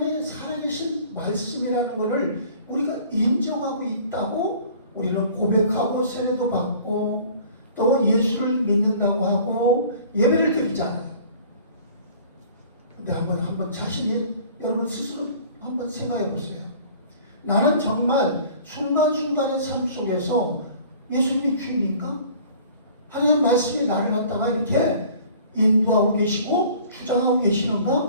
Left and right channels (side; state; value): both; inverted; correlation -0.49